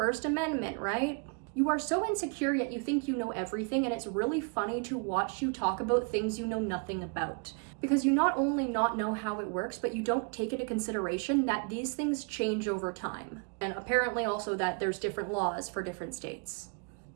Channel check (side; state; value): left; quieter; 37.1 dB